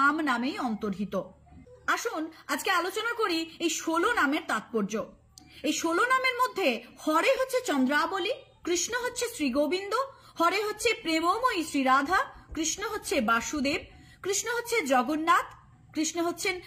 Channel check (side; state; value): both; identical; correlation 1.00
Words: নামেই অন্তর্হিত। আসুন আজকে আলোচনা করি এই 16 নামের তাৎপর্য। এই 16 নামের মধ্যে হরে হচ্ছে চন্দ্রাবলী, কৃষ্ণ হচ্ছে শ্রী গোবিন্দ, হরে হচ্ছে প্রেমময়ী শ্রী রাধা, কৃষ্ণ হচ্ছে বাসুদেব, কৃষ্ণ হচ্ছে জগন্নাথ, কৃষ্ণ হচ্ছেন